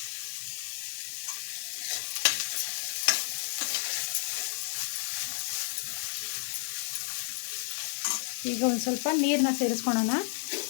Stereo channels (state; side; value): silent; right; digital silence